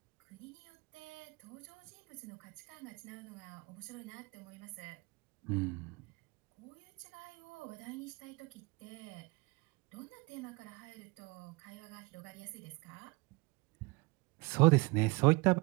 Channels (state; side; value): quieter; left; 26.3 dB